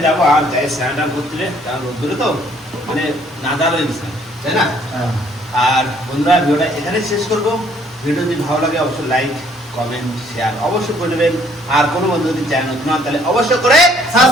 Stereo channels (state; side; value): normal; both; correlation 0.62